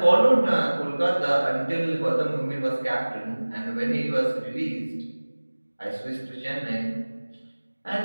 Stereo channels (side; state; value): both; inverted; correlation -1.00